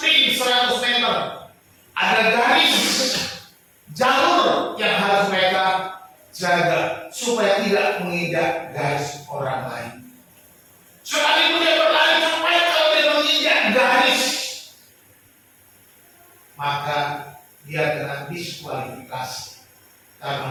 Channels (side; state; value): both; identical; correlation 1.00